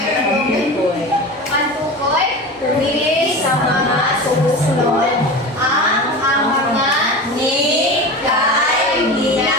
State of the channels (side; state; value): both; normal; correlation 0.30